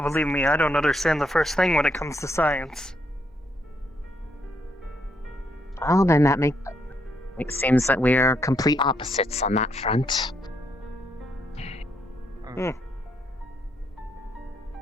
believe me, I don't understand the first thing when it comes to science. Well, then it seems that we're complete opposites on that front.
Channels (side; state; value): both; normal; correlation 0.75